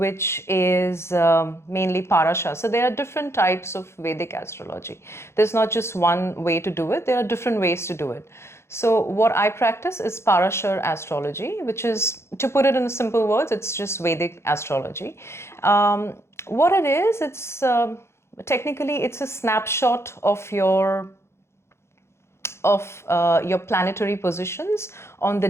is mainly parasha. So there are different types of Vedic astrology. There's not just one way to do it. There are different ways to do it. So what I practice is parasha astrology, which is, to put it in simple words, it's just Vedic astrology. What it is, it's technically it's a snapshot of your planetary positions on the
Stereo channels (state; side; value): late; right; 0.13 ms